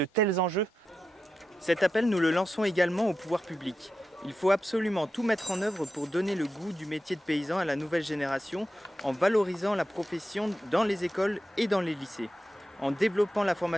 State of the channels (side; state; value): both; normal; correlation 0.90